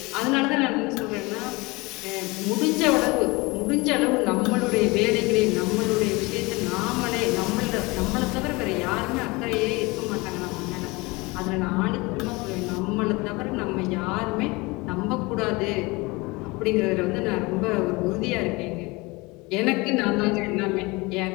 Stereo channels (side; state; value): right; quieter; 24.3 dB